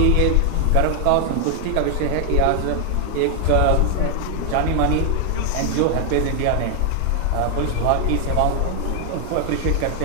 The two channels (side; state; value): both; different; correlation 0.00